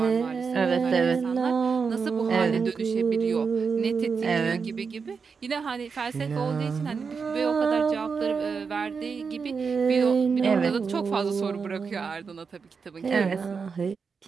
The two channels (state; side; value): quieter; left; 5.5 dB